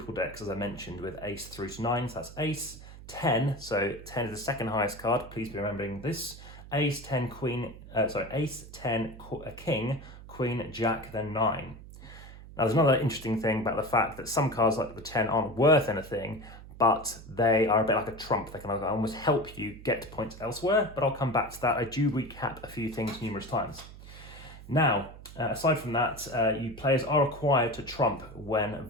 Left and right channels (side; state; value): right; noise; hum, 16 dB below the sound